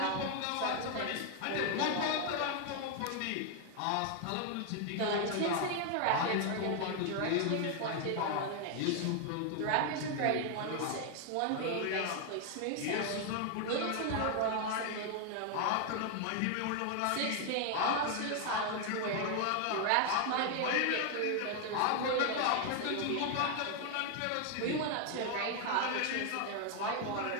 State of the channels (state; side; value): different; both; correlation 0.00